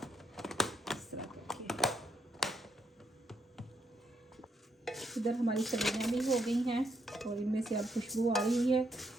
इस तरह करके। इधर हमारी सब्जियाँ भी हो गई हैं और इनमें से अब खुशबू आ रही है।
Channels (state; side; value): normal; both; correlation 0.77